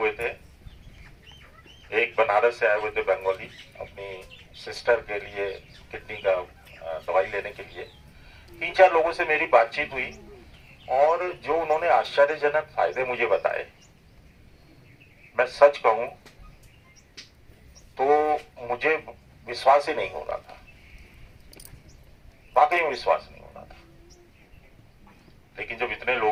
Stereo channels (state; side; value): identical; both; correlation 1.00